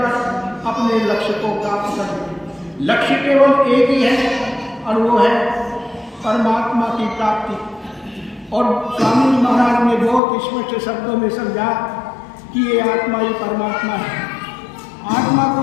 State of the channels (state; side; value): drops out; right; at 10.2 s